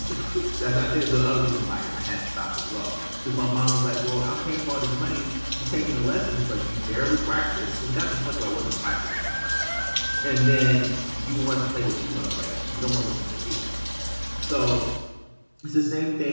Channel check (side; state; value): both; inverted; correlation -1.00